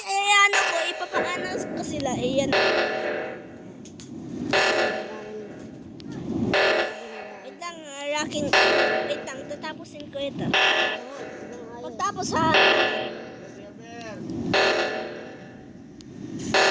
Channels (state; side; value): identical; both; correlation 1.00